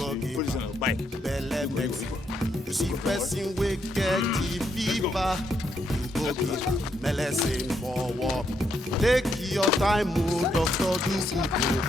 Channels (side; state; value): both; normal; correlation 0.77